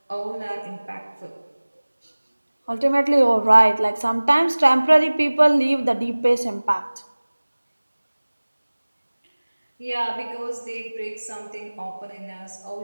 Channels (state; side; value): inverted; both; correlation -1.00